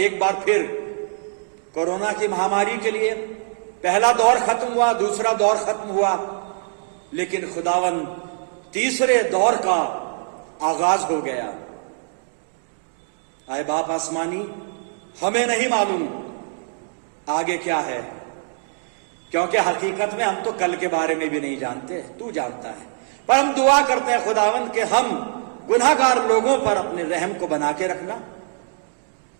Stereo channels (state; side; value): silent; left; digital silence